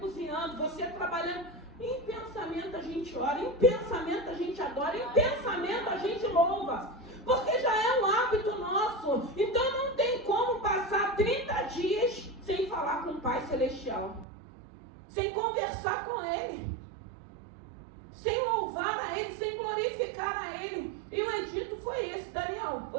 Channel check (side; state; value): left; drops out; at 14.2 s